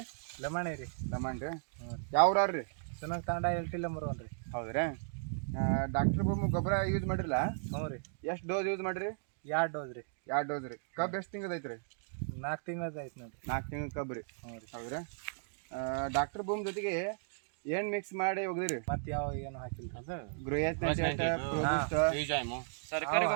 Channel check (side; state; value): left; silent; digital silence